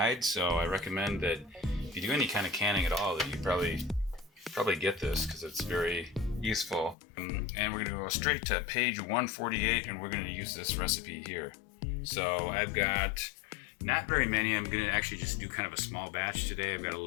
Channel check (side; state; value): right; drops out; at 7.0 s